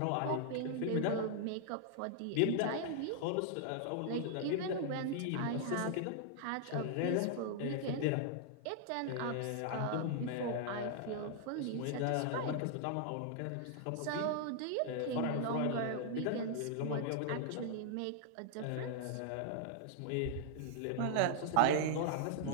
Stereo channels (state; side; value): different; both; correlation -0.01